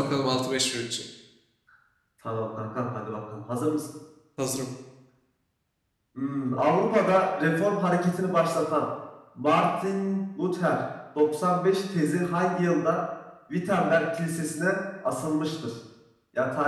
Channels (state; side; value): identical; both; correlation 1.00